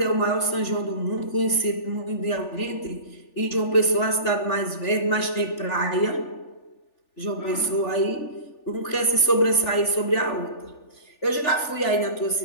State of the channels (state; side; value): late; right; 3.4 ms